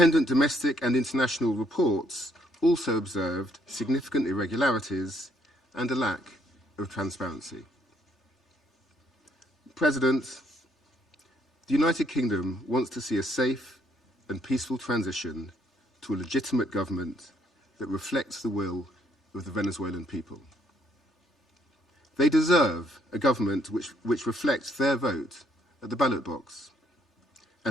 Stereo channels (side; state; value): both; normal; correlation 0.69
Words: domestic and international reports also observed significant irregularities and a lack of transparency. President, the United Kingdom wants to see a safe and peaceful transition to a legitimate government that reflects the will of the Venezuelan people. They deserve a government which reflects their vote at the ballot box